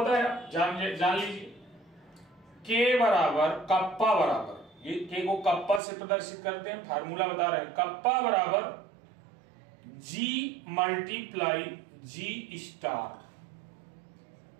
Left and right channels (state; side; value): drops out; left; at 5.8 s